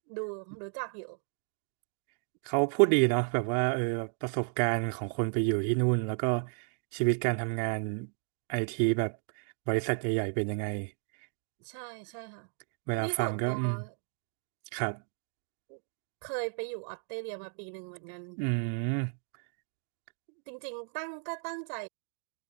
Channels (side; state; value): left; silent; 55 dB below the other